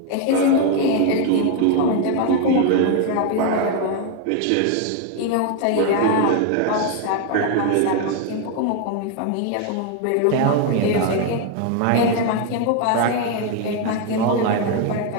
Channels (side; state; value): both; different; correlation 0.01